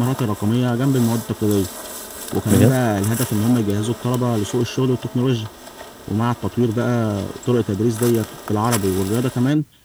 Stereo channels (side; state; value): both; identical; correlation 1.00